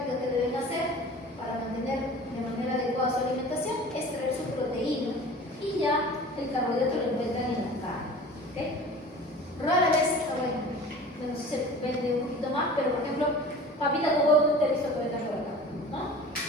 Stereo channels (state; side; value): normal; both; correlation 0.41